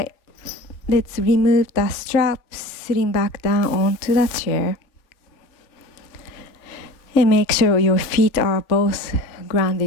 let's remove the strap, sitting back down onto the chair. And make sure your feet are both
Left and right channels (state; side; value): late; right; 3.4 ms